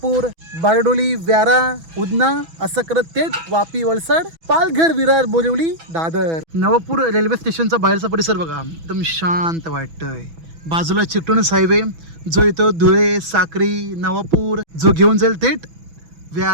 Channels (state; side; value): late; left; 6.1 ms